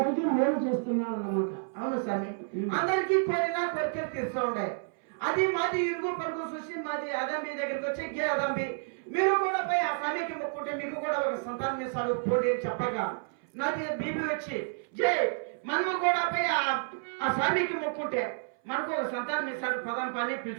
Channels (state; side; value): silent; left; 58 dB below the other